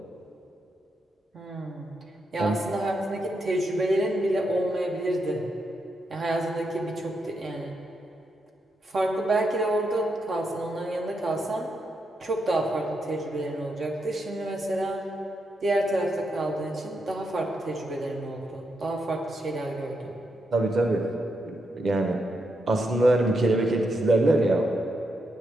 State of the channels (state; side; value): normal; both; correlation 0.82